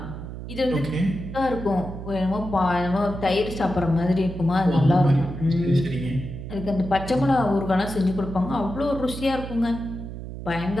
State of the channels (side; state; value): right; noise; hum, 9 dB below the sound